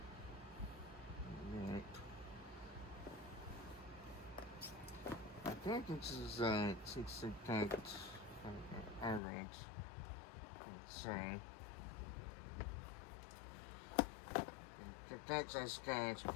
I think this is 60 average. So. Thanks and scans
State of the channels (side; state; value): right; drops out; at 9.2 s